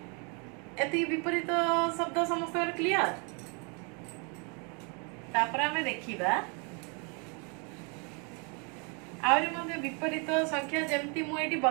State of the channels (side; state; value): left; quieter; 34.7 dB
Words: एति विपरीत शब्द समस्त क्लियर तापर आमे देखिबा आउरी मध्ये विपरीत संख्या जेमती मु एटी